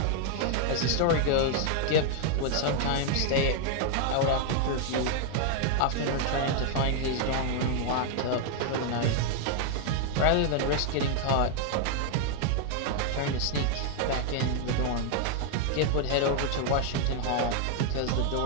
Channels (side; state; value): both; different; correlation 0.00